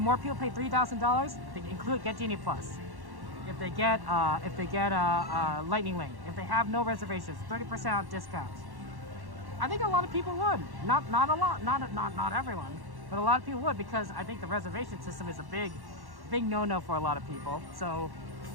people pay $3,000? They get Genie Plus. If they get Lightning Lane, if they have no reservations, 30% discounts. I think a lot of people would. Not a lot, not everyone, but a lot of people would, because I think the reservation system is a big no-no for a lot of people. So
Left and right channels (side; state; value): left; late; 1.1 ms